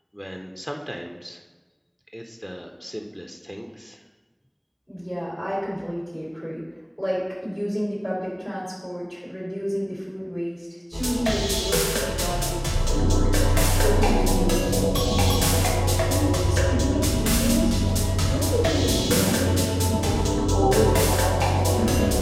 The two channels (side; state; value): both; identical; correlation 1.00